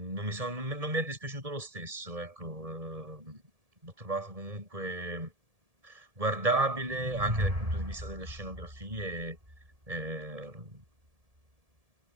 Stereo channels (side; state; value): left; late; 1.7 ms